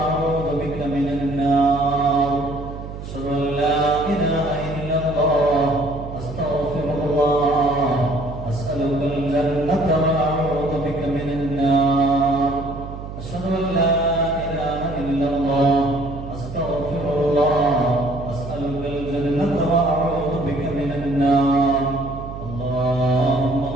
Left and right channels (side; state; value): right; noise; hum, 10 dB below the sound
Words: بك من النار. أشهد أن لا إله إلا الله أستغفر الله أسألك الجنة وأعوذ بك من النار. أشهد أن لا إلا الله أستغفر الله أسألك الجنة وأعوذ بك من النار. اللهم